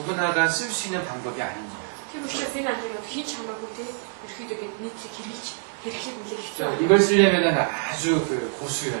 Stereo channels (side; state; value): left; silent; digital silence